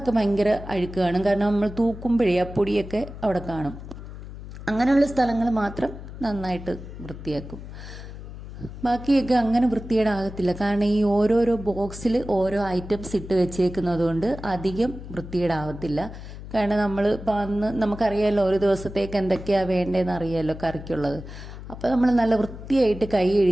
ഭയങ്കര അഴുക്ക് കാണും. കാരണം നമ്മൾ തൂക്കുമ്പോഴേ ആ പൊടിയൊക്കെ അവിടെ കാണും. അങ്ങനെയുള്ള സ്ഥലങ്ങൾ മാത്രം നന്നായിട്ട് വൃത്തിയാക്കും. ബാക്കിയൊക്കെ അങ്ങനെ വൃത്തികേടാകത്തില്ല. കാരണം ഈ ഓരോരോ ബോക്സിൽ ഓരോ ഐറ്റംസ് ഇട്ട് വെച്ചേക്കുന്നത് കൊണ്ട് അധികം വൃത്തികേടാവത്തില്ല. കാരണം നമ്മൾ ഇപ്പം അന്ന് നമുക്കറിയാമല്ലോ ഒരു ദിവസത്തേക്ക് എന്തൊക്കെയാണ് വേണ്ടതെന്ന് അറിയാമല്ലോ കറിക്കുള്ളത്. അപ്പോൾ നമ്മൾ നല്ല വൃത്തിയായിട്ട് കൈ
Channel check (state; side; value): noise; left; hum, 12 dB below the sound